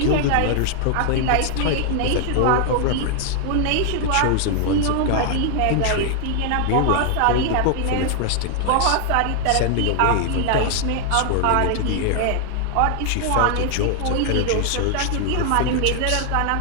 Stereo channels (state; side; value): different; both; correlation 0.00